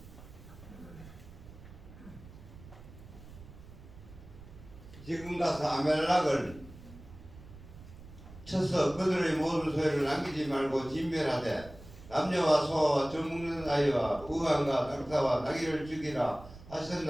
지금 가서 아멜락을 쳐서 그들의 모든 소유를 남기지 말고 진멸하되 남녀와 소와 젖먹는 아이와 우왕과 낙타와 나귀를 죽이라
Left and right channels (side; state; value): right; noise; rumble, 18 dB below the sound